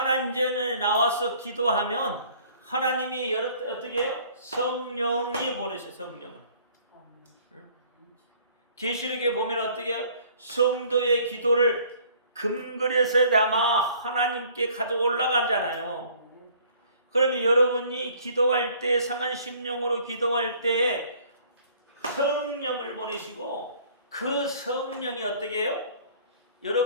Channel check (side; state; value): both; inverted; correlation -0.56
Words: 전에 나와서 기도하면 하나님이 어떻게 해요? 성령이 보내세요. 성령을. 계시록에 보면 어떻게 해요? 성도의 기도를 금그릇에 담아 하나님께 가져 올라가잖아요. 그러면 여러분이 기도할 때 상한 심령으로 기도할 때 성령을 보내시고 그 성령이 어떻게 해요?